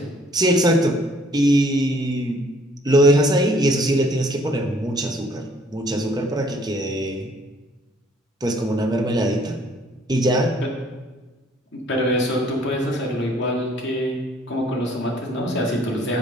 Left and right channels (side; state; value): both; normal; correlation 0.61